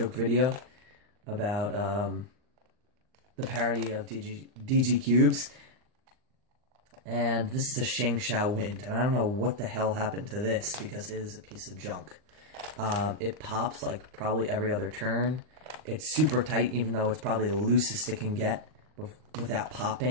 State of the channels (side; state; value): left; late; 39 ms